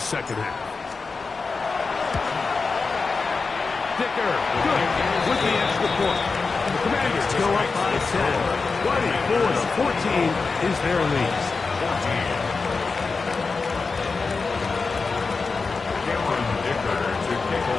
second half. Dicker, good, with the extra point. The Commanders go up by 10. 24-14 is their lead. 14. Cameron Dicker to kick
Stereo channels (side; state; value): right; quieter; 4.4 dB